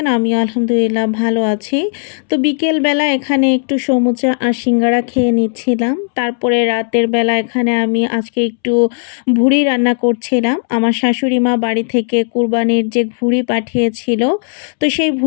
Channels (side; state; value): right; silent; 70 dB below the other